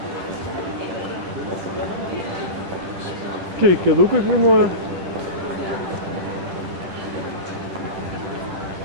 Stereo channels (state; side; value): late; left; 10 ms